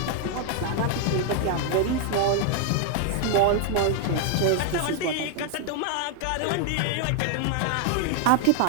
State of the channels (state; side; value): different; both; correlation 0.00